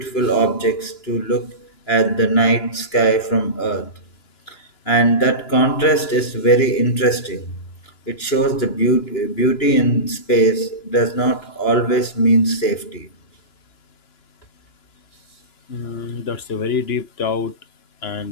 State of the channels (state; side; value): late; right; 2.9 ms